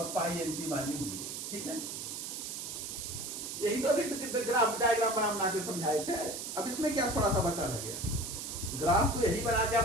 पाई एंटी बॉन्डिंग जीरेड। ठीक है? यही तो अभी ग्राफ डायग्राम बना के समझाए थे। अब इसमें क्या थोड़ा सा बचा रह गया? ग्राफ को यही बना के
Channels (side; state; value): right; noise; hiss, 6 dB below the sound